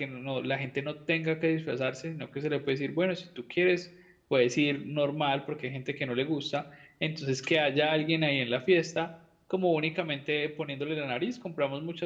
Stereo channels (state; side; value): identical; both; correlation 1.00